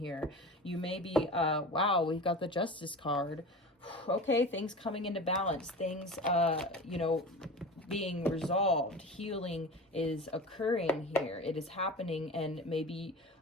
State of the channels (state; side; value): normal; both; correlation 0.33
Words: You may be, wow, we've got the Justice card. Okay, things coming into balance, things, you know, being resolved. Healing is occurring here. It is happening, and maybe